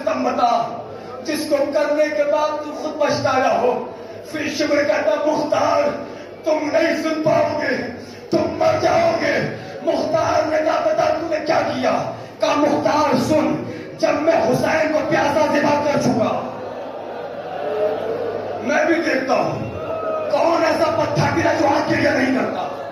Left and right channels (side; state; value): both; identical; correlation 1.00